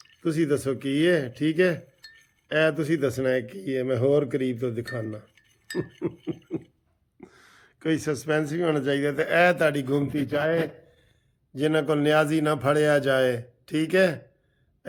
तुसी दसो की है, ठीक है। ए तुसी दसना है की है, मैं होर करीब तो दिखाना। कोई सस्पेंस भी होना चाहिए। तो ए ताड़ी घूमती चाहे जिन्हों को न्याजी ना फड़िया जाए, ठीक है।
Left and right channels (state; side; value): identical; both; correlation 1.00